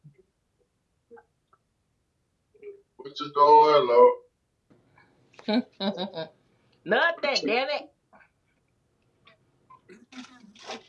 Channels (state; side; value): identical; both; correlation 1.00